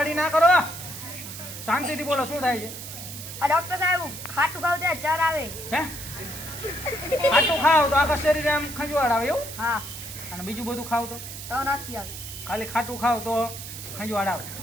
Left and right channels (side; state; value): right; noise; hiss, 10 dB below the sound